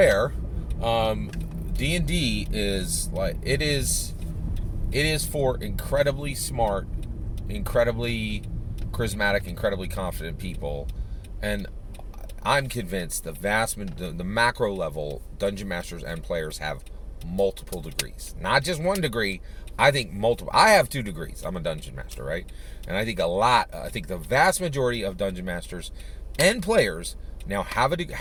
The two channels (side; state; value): both; identical; correlation 1.00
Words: D&D is like, it is for incredibly smart, incredibly charismatic, incredibly confident people. And I'm convinced the macro level Dungeon Masters and players have multiple degrees. Not just one degree. I think multiple. I have 2 degrees. I'm a Dungeon Master, right? And I think the vast majority of Dungeon Masters and players now have